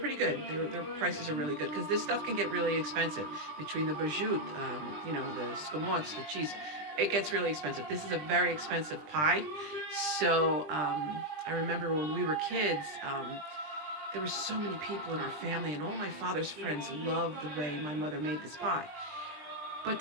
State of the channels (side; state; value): left; late; 20 ms